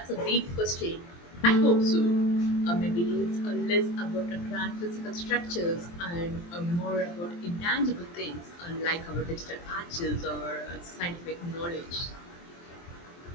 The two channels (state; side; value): late; right; 23 ms